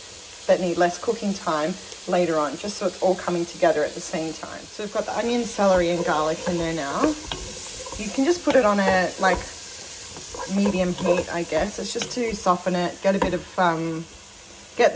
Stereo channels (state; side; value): identical; both; correlation 1.00